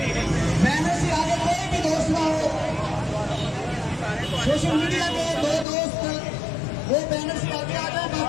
بینر سے آگے کوئی بھی دوست نہ ہو. سوشل میڈیا کے دو دوست وہ بینر سے آگے آ جائیں،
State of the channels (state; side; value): drops out; right; at 5.7 s